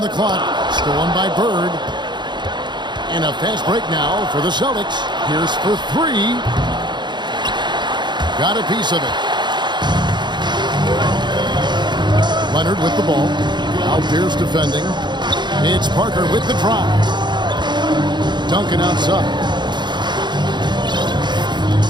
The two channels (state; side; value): late; left; 0.22 ms